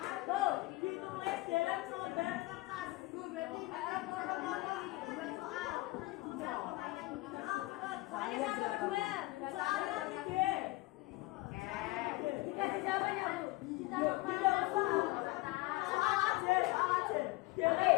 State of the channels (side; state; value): right; quieter; 21.0 dB